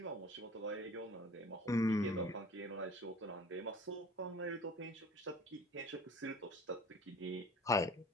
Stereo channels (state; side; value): normal; both; correlation 0.45